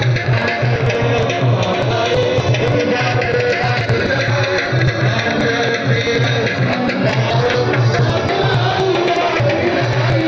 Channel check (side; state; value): both; identical; correlation 1.00